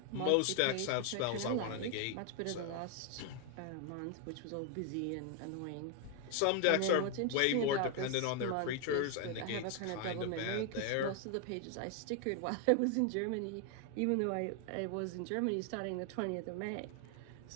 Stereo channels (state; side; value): different; both; correlation 0.01